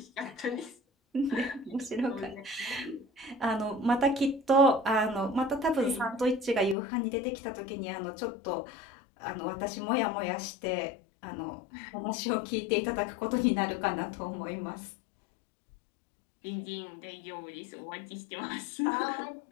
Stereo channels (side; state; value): right; drops out; at 6.8 s